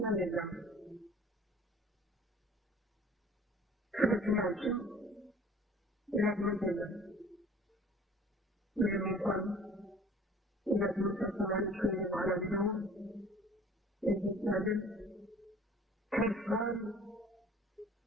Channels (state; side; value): normal; both; correlation 0.50